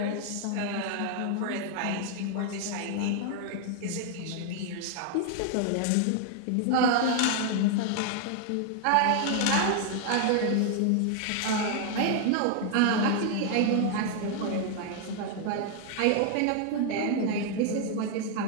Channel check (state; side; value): different; both; correlation 0.00